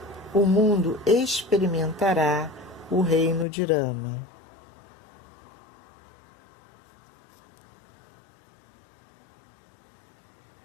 o mundo experimentará o reino de Rama.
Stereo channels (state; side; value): drops out; right; at 3.5 s